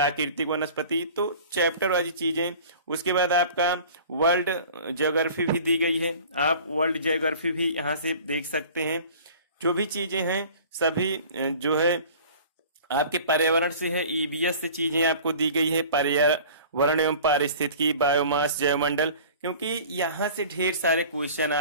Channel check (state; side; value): inverted; both; correlation -0.44